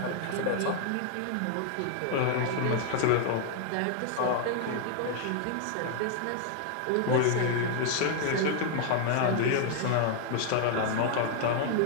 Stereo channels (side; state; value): both; different; correlation 0.00